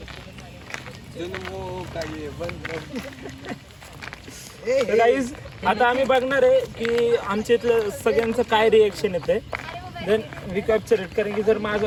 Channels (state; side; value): identical; both; correlation 1.00